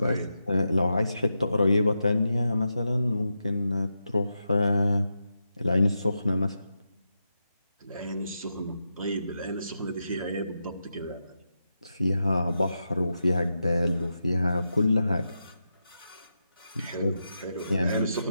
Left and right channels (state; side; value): inverted; both; correlation -0.87